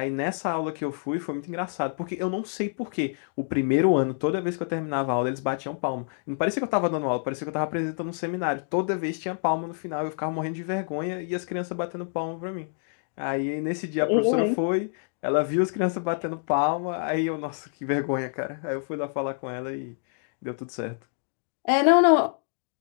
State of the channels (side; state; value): right; silent; digital silence